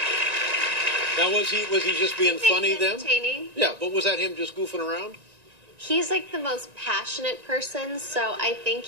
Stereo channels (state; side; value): late; left; 1.9 ms